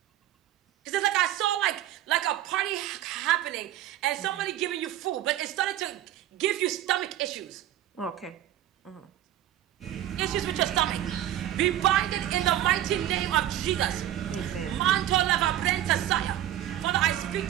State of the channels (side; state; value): left; quieter; 12.7 dB